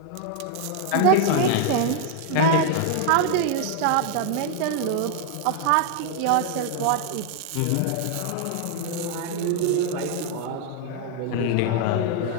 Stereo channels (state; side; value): different; both; correlation 0.00